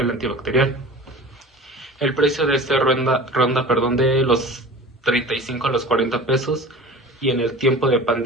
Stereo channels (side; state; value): both; normal; correlation 0.38